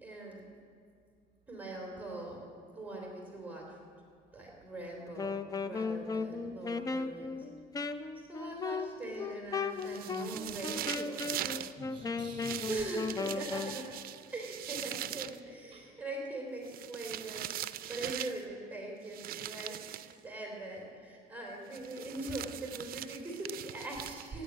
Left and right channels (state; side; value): normal; both; correlation 0.49